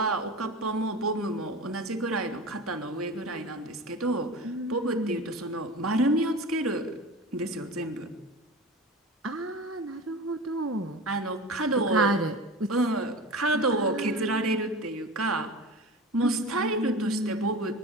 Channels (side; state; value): both; normal; correlation 0.31